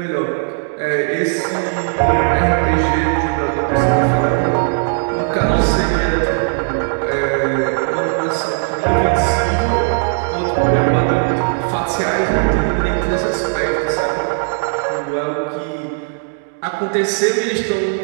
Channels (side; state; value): left; silent; 65 dB below the other